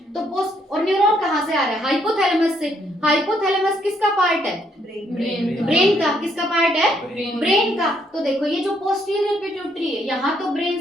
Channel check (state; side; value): normal; both; correlation 0.71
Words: तो पोस्ट और न्यूरॉन कहाँ से आ रहा है? हाइपोथैलेमस से। हाइपोथैलेमस किसका पार्ट है? ब्रेन का। किसका पार्ट है? ब्रेन का। तो देखो ये जो पोस्टीरियर पिट्यूटरी है यहाँ तो ब्रेन